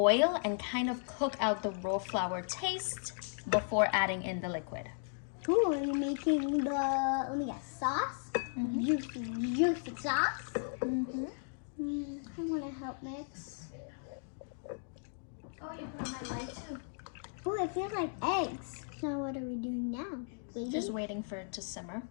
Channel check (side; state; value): right; silent; digital silence